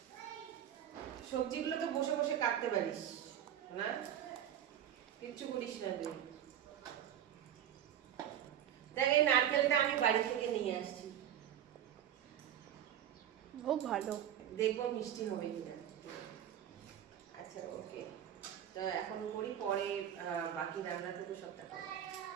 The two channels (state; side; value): quieter; left; 10.4 dB